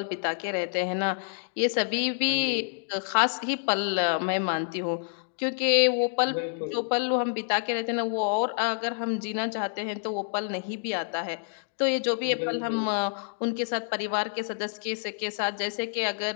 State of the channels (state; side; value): silent; right; digital silence